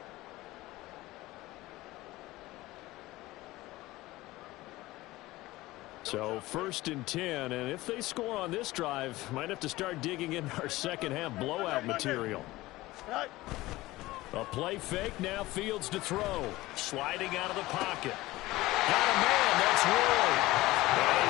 So 1st and 10, and if they score on this drive, might have to start digging in our second-half blowout material. A play fake, now Fields to throw. Sliding out of the pocket. Got a man, that's Roy. And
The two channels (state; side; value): quieter; right; 18.5 dB